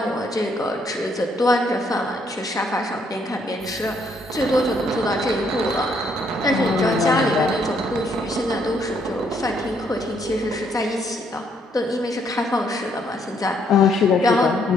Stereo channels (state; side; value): normal; both; correlation 0.70